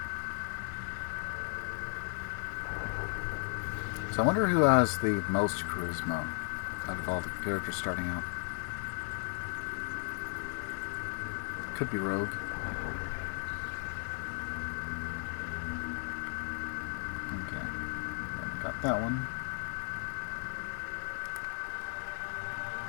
So I wonder who has the most charisma out of all the characters starting out. Could be Rogue. Okay. Got that one.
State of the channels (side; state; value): right; silent; 54 dB below the other